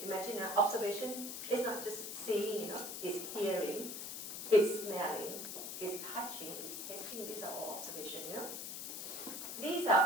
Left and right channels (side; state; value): left; noise; hiss, 6 dB below the sound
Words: imagine observation is not just seeing, it's hearing, it's smelling, it's touching, it's tasting. These are all observation, These